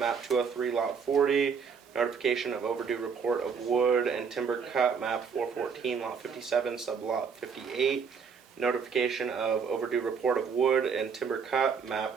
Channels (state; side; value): quieter; left; 6.1 dB